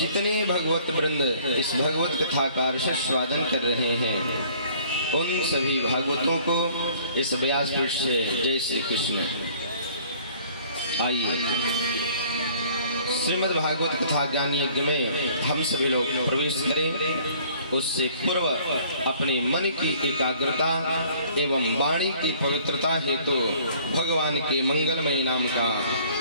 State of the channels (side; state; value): both; inverted; correlation -0.55